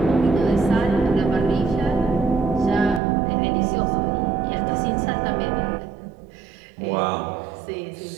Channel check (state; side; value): drops out; left; at 3.0 s